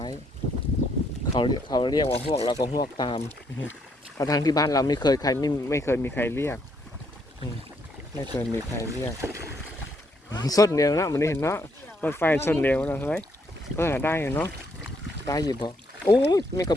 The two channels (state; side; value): normal; both; correlation 0.72